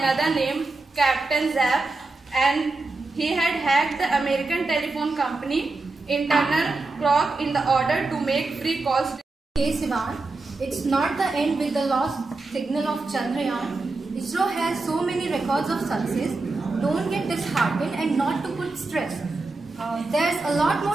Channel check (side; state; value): left; quieter; 3.4 dB